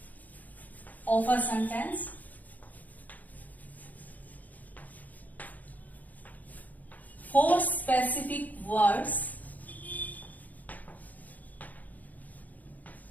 of a sentence, for specific words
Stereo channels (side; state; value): right; late; 0.080 ms